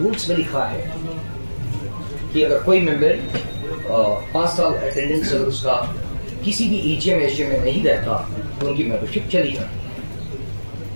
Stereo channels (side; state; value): both; inverted; correlation -1.00